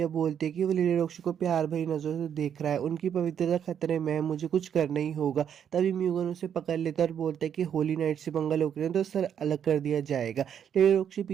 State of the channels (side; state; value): left; quieter; 8.6 dB